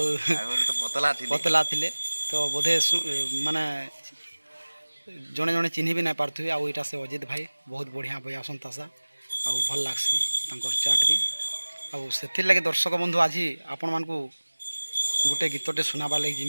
पतला थे तो बोधे माने जड़े जड़े चिन्ह भी नहीं पार्थ्वे आईटा से अजित भाई बहुत बढ़िया बयासन तासा आउ भल लगसी चाट भी आउ से लगे दर्शक बंधु आज आपण मान गोटे गीतटे सुनाबार लगे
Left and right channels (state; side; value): inverted; both; correlation -1.00